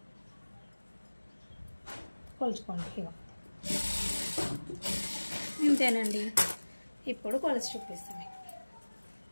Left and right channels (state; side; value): inverted; both; correlation -1.00